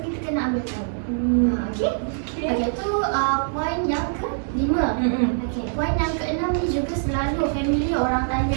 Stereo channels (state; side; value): silent; left; digital silence